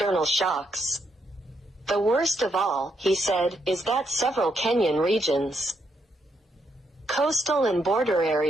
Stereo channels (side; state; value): both; normal; correlation 0.78